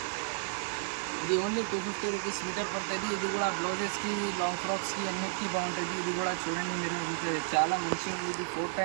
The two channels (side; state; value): left; silent; 56 dB below the other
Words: ఇది ఓన్లీ 250 రూపీస్ మీటర్ పడుతుంది. ఇది కూడా బ్లౌజెస్కి, లాంగ్ ఫ్రాక్స్కి అన్నిటికీ బాగుంటుంది. ఇది కూడా చూడండి మీరు, ఇది చాలా మంచిగా ఉంది. ఇది 4